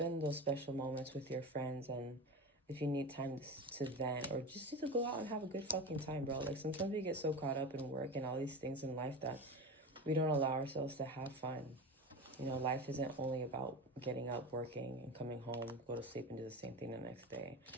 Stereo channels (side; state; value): both; normal; correlation 0.27